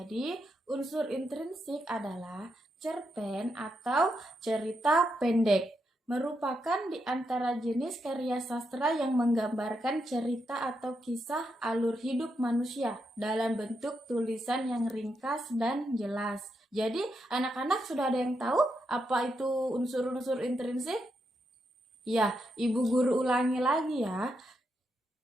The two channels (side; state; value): both; normal; correlation 0.82